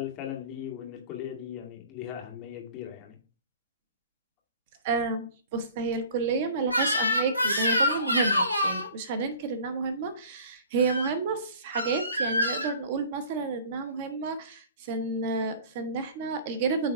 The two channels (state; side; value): inverted; both; correlation -0.46